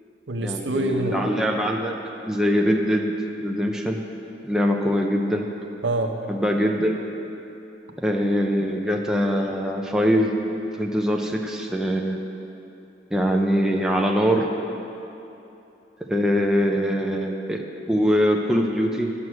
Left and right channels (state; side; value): normal; both; correlation 0.78